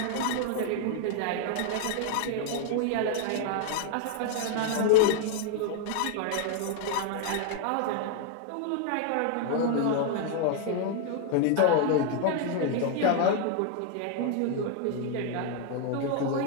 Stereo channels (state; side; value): different; both; correlation 0.00